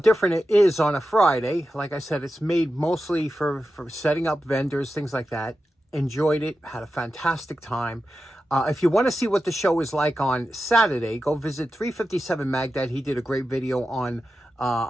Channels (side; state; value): both; normal; correlation 0.91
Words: it is on a Friday. Like I said, it's made mostly for setting up vendors, things like that. Enjoyed it, had a fantastic time. If you want to see what the show is like on Saturday, go visit 357 Magdad. He did a great video on